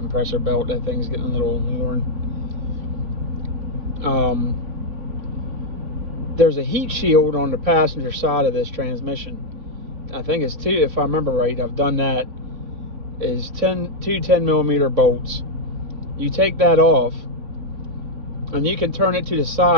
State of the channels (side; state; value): left; late; 3.5 ms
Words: belt. That thing's getting a little worn. There's a heat shield on the passenger side of this transmission. I think it's two, if I remember right, I've done that, is two 10 millimeter bolts. You take that off and you can turn it to the